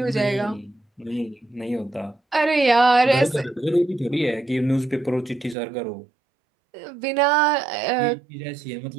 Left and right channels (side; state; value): left; drops out; at 5.6 s